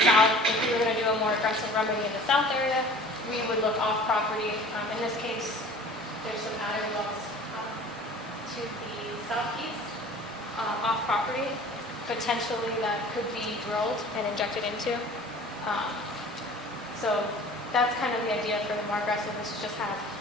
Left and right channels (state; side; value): normal; both; correlation 0.45